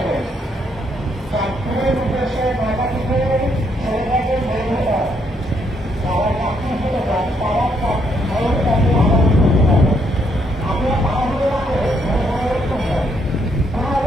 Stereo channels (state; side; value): normal; both; correlation 0.73